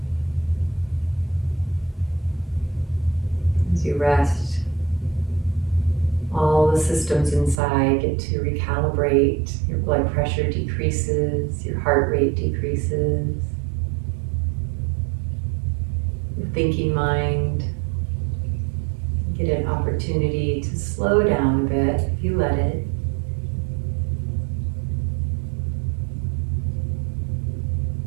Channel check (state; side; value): drops out; left; at 7.6 s